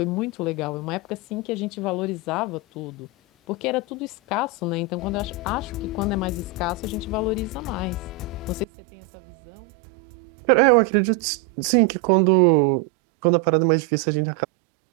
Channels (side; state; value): left; drops out; at 8.7 s